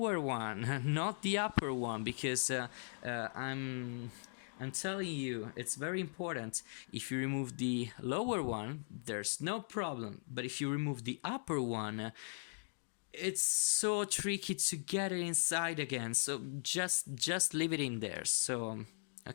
one, not the upper one, because I'm telling you, it's very important. If you remove the lower one, there's no problem. But if you remove the upper one, it's so tricky to get it inside again. So just leave it in there. So,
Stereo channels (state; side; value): silent; right; digital silence